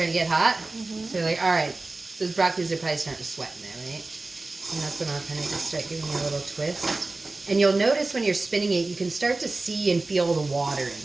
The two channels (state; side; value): quieter; left; 3.3 dB